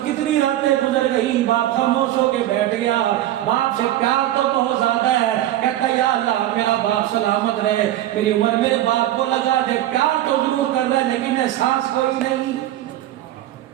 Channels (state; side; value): quieter; left; 13.7 dB